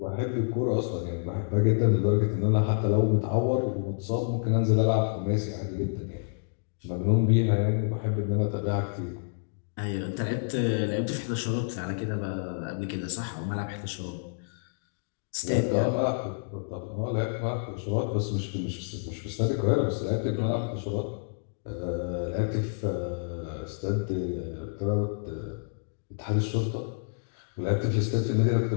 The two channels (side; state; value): right; silent; digital silence